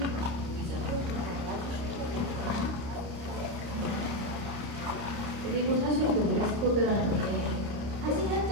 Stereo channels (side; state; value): left; late; 29 ms